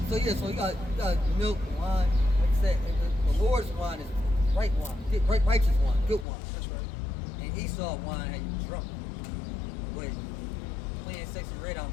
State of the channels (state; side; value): drops out; right; at 6.2 s